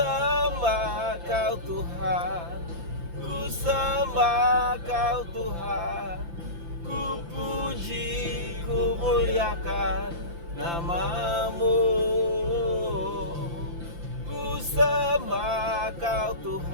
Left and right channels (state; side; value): late; left; 5.9 ms